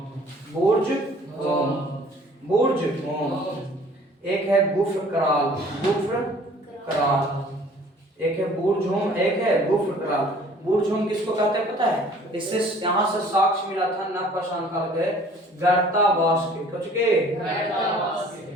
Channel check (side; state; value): both; normal; correlation 0.52